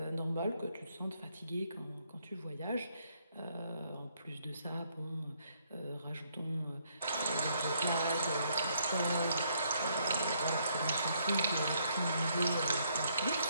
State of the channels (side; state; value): both; inverted; correlation -0.71